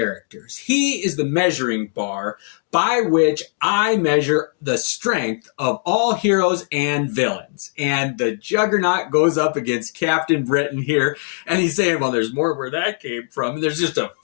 He is the measuring bar by which I measure the strength of all heroes and villains. And the Juggernaut goes up against Captain Britain here, and he's saying, well, there's more where that came from. And there's just a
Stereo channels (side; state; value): right; silent; digital silence